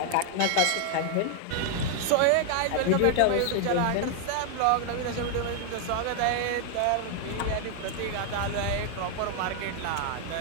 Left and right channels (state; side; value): different; both; correlation 0.00